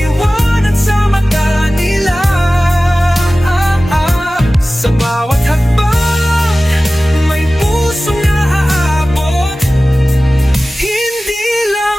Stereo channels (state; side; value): normal; both; correlation 0.97